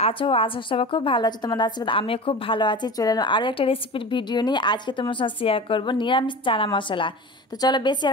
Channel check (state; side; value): normal; both; correlation 0.33